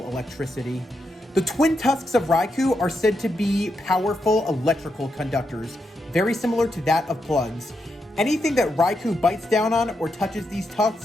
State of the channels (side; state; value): both; normal; correlation 0.83